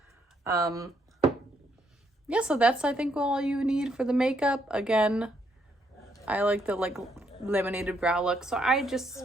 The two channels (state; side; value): normal; both; correlation 0.73